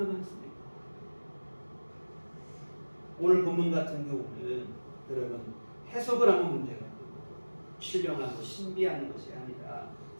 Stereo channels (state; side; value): inverted; both; correlation -1.00